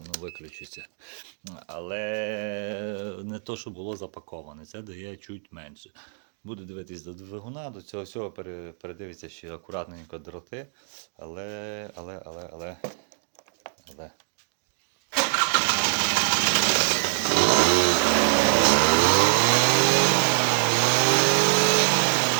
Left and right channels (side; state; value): left; silent; 62 dB below the other